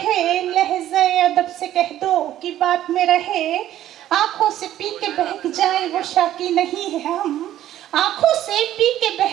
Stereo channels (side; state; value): left; quieter; 12.6 dB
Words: लहज़े अदब से कह दो कि बात में रहे। आंखों से पी के बहक जाए वो शाकी नहीं है हम, आंखों से पी के